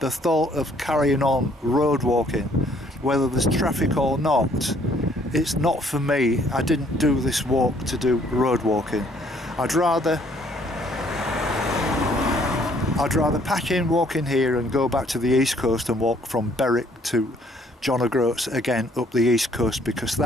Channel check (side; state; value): both; normal; correlation 0.63